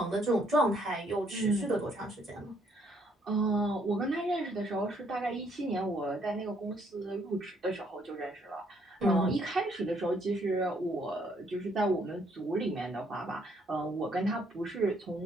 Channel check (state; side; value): normal; both; correlation 0.68